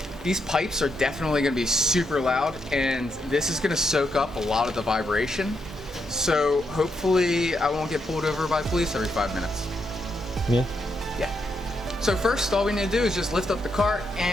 These pipes are definitely gonna be super loud, and this is gonna soak up a lot of the vibration. So hopefully I won't get pulled over by police every 5 minutes. Yeah. Yeah. So first, all we need to do is just lift up the cart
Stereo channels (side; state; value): both; normal; correlation 0.80